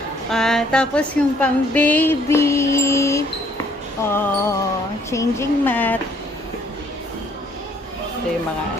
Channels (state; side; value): normal; both; correlation 0.63